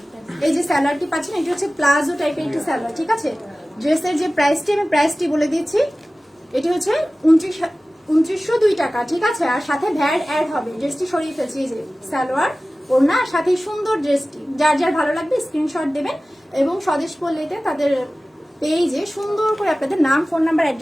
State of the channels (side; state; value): both; normal; correlation 0.97